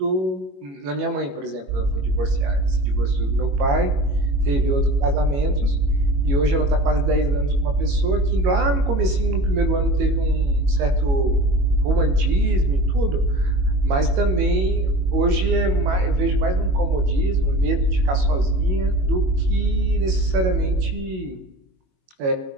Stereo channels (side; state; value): left; late; 22 ms